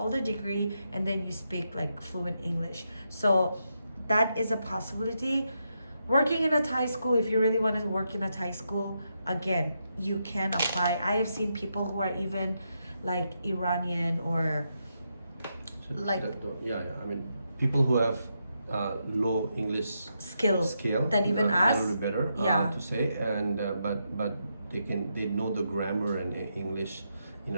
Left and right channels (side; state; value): both; inverted; correlation -0.82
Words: the degree and then you speak like fluent English. So that is a possibility. Working in a Thai school, if you really want to work in a Thai school, again, you can apply. I have seen people who are even like Iranian or like I mean, people who have low English skill than even a us. little better Yeah. to say, and but they know the grammar and English in